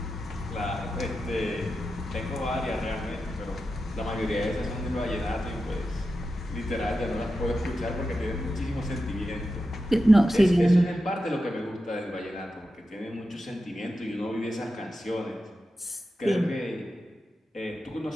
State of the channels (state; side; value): normal; both; correlation 0.91